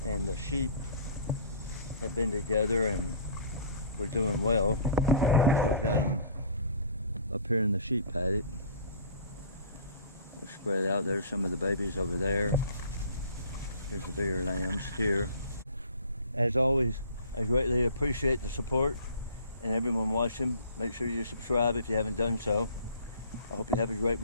and the sheep have been together and we're doing well. So I've got them up here in the sheep paddock. They're spread out. There's some of the babies over there. Here's the bigger lambs here. As always, I greatly appreciate the support and everyone watching. Make sure you subscribe if you haven't done so. I hope you have a great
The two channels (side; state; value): both; inverted; correlation -0.48